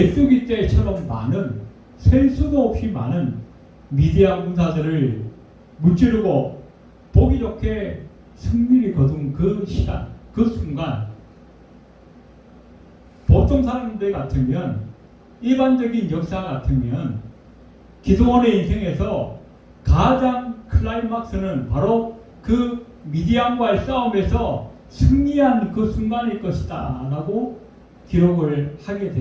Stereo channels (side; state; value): both; identical; correlation 1.00